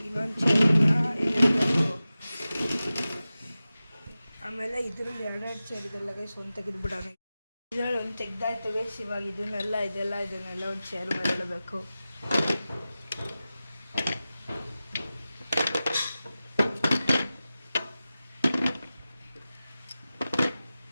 ಇನ್ನೊಂದು ಚೇರನ್ನ ಇಡಬೇಕು. ಆಮೇಲೆ ಇದರಲ್ಲಿ 2 ಚೇರ್ ಇದೆಲ್ಲ ಗೈಸ್, ಒಂದು ತೆಗೆದುಬಿಡೋಣ. ಇದರಲ್ಲಿ ಒಂದು ತೆಗ್ದಾಯ್ತು ಗೈಸ್. ಇವಾಗ ಇದನ್ನೆಲ್ಲ ಒಂದು ಚೇರ್ ಮೇಲೆ ಇಡಬೇಕು.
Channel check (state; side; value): inverted; both; correlation -0.95